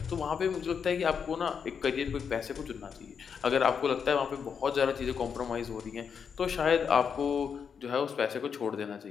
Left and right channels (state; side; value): quieter; right; 6.7 dB